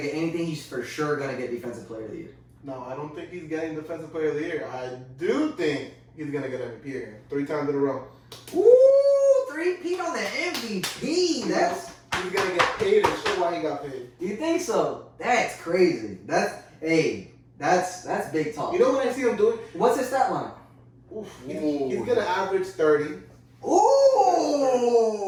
get anything, he's for sure gonna get Defensive Player of the Year. No, I don't think he's getting Defensive Player of the Year. I do think he's gonna get MVP again, 3 times in a row. Ooh, 3-peat on the MVP. That's. He's gonna get paid and show why he got paid. You think so? That's crazy. That's big talk. You know what I see him doing? What's his stat line? Oof, he's gonna average 30. Ooh.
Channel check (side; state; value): both; identical; correlation 1.00